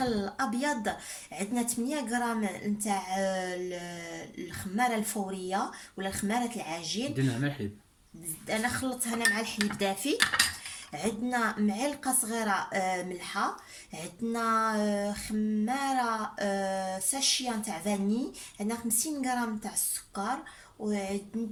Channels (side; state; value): both; identical; correlation 1.00